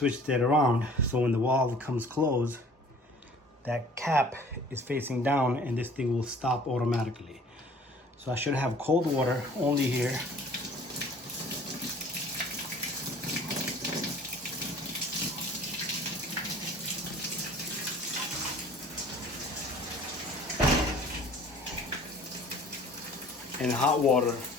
it around, so when the wall comes closed, that cap is facing down and this thing will stop automatically. So I should have cold water only here. And hot water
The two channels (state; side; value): normal; both; correlation 0.50